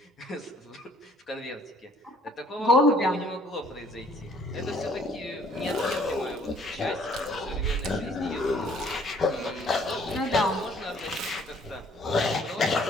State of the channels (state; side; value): normal; both; correlation 0.60